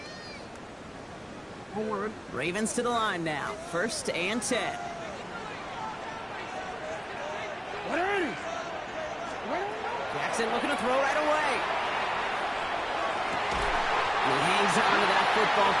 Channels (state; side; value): identical; both; correlation 1.00